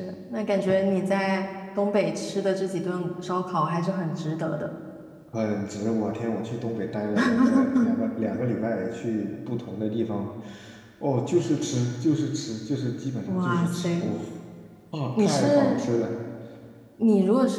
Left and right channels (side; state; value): both; identical; correlation 1.00